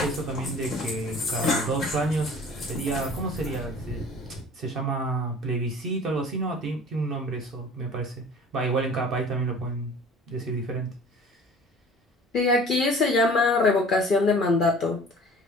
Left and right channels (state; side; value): normal; both; correlation 0.46